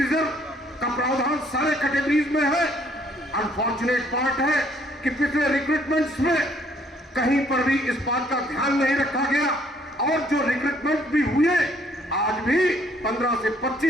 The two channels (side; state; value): both; normal; correlation 0.64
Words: का प्रावधान सारे कैटेगरीज में है। अनफॉर्चुनेट पार्ट है कि पिछले रिक्रूटमेंट्स में कहीं पर भी इस बात का ध्यान नहीं रखा गया और जो रिक्रूटमेंट भी हुए आज भी 15 से